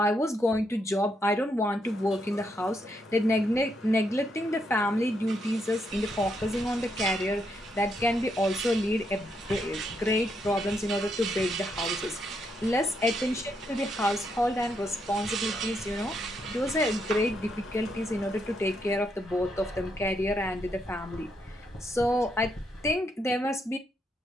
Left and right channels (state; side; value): normal; both; correlation 0.78